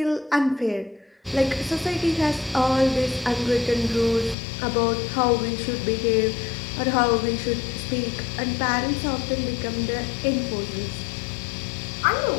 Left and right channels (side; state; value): right; drops out; at 4.4 s